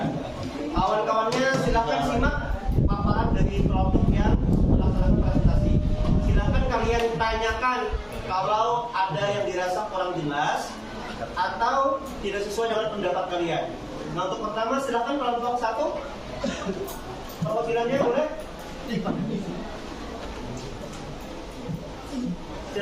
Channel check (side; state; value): both; identical; correlation 1.00